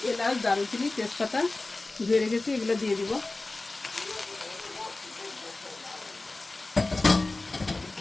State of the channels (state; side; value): quieter; right; 3.1 dB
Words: এলাচ, দারুচিনি, তেজপাতা ধুয়ে রেখেছি, এগুলো দিয়ে দিব।